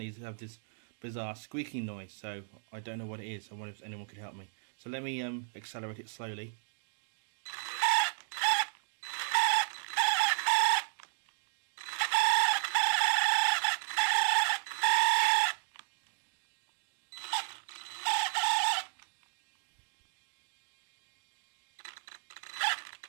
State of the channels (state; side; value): silent; left; digital silence